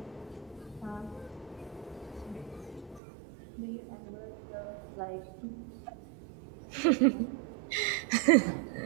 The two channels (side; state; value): left; drops out; at 3.0 s